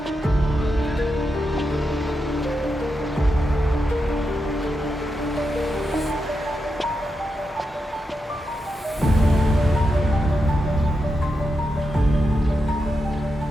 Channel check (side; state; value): both; normal; correlation 0.87